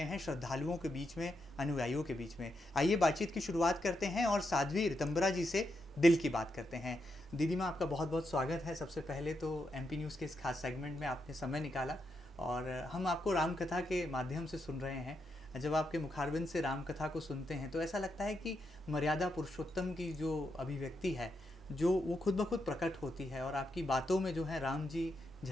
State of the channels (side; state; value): both; normal; correlation 0.83